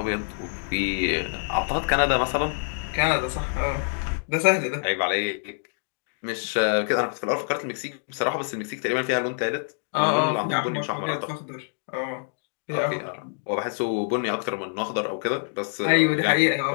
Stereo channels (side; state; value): right; silent; digital silence